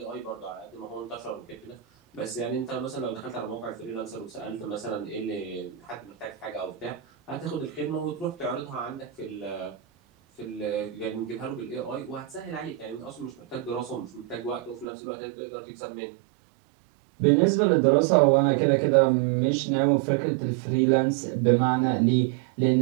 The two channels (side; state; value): left; drops out; at 14.9 s